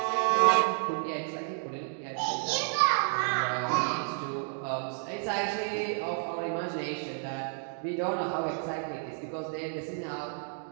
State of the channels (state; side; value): silent; left; 57 dB below the other